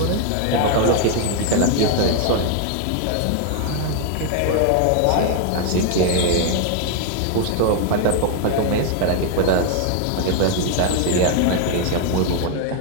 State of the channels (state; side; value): different; both; correlation 0.00